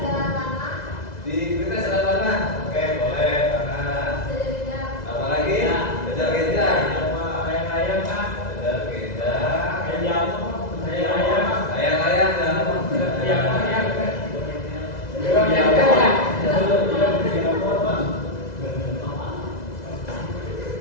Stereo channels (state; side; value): late; right; 2.0 ms